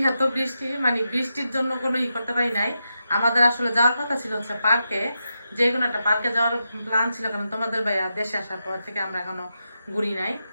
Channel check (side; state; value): both; inverted; correlation -0.87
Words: বৃষ্টি, মানে বৃষ্টির জন্য কোনো ই করতে পারি নাই। আমাদের আসলে যাওয়ার কথা ছিল হচ্ছে পার্কে, যে কোনো একটা পার্কে যাওয়ার প্ল্যান ছিল, কারণ তোমাদের ভাইয়া দেশে আসার পর থেকে আমরা এখনো ঘুরি নাই।